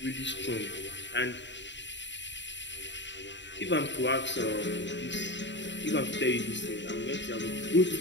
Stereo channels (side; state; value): right; late; 0.53 ms